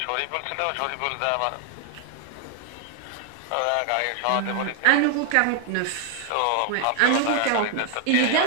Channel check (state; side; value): different; both; correlation 0.00